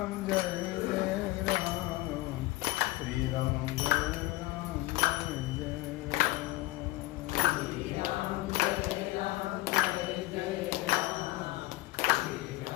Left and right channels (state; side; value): quieter; right; 19.2 dB